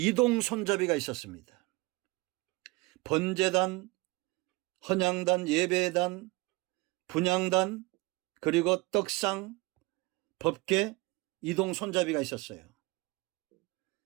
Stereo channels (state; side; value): quieter; left; 24.2 dB